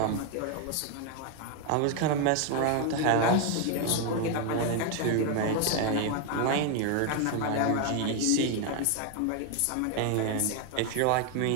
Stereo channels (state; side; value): different; both; correlation 0.01